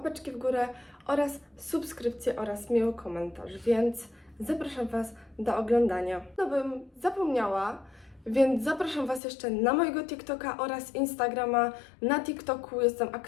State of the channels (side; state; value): right; drops out; at 9.2 s